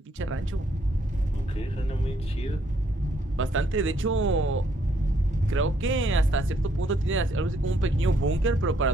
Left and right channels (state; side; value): normal; both; correlation 0.70